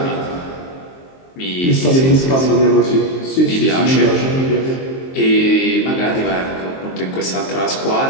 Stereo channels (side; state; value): right; late; 23 ms